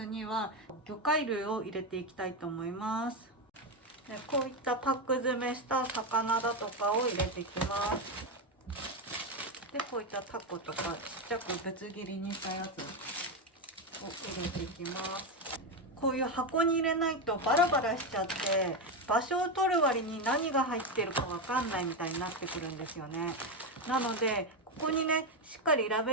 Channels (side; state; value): both; normal; correlation 0.10